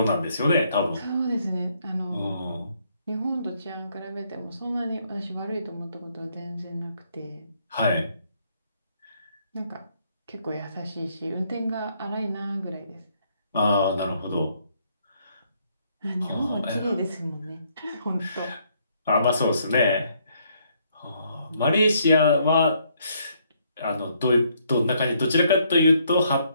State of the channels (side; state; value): both; inverted; correlation -0.70